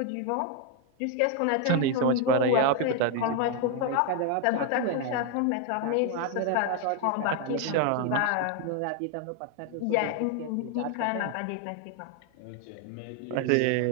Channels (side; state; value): both; different; correlation 0.01